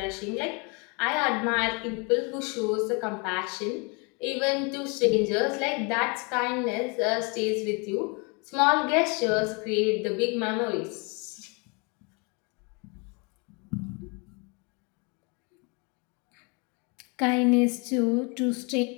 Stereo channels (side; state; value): right; quieter; 31.7 dB